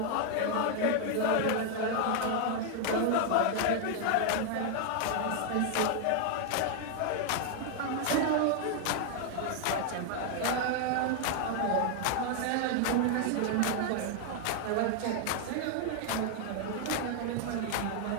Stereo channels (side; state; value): both; different; correlation 0.00